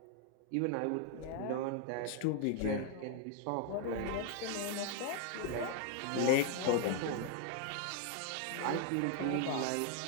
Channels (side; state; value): both; different; correlation 0.00